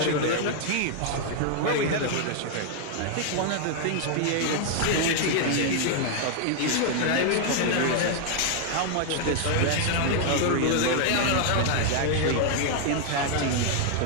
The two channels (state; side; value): different; both; correlation 0.00